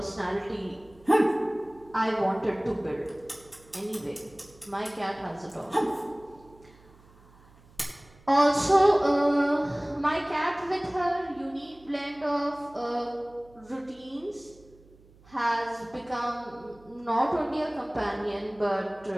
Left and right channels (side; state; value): right; noise; hum, 26 dB below the sound